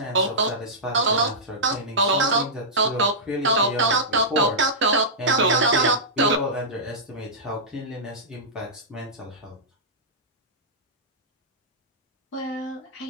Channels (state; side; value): normal; both; correlation -0.13